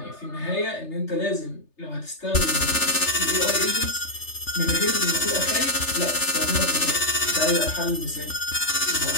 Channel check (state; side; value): late; right; 3.3 ms